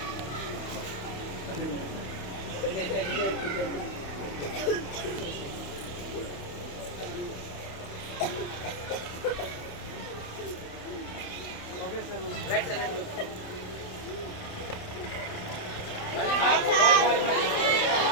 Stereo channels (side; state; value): right; late; 28 ms